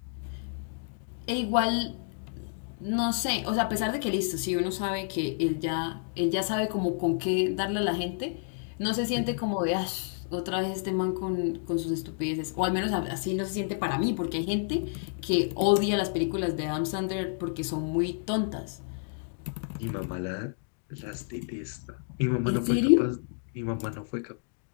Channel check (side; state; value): right; silent; digital silence